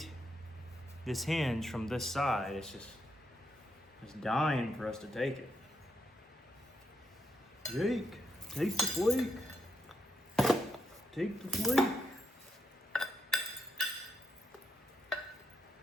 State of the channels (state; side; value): normal; both; correlation 0.81